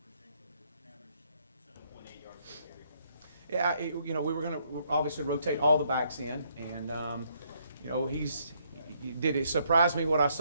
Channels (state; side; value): inverted; both; correlation -0.71